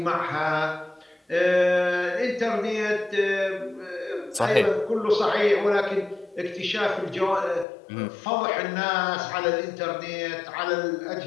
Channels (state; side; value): drops out; right; at 7.7 s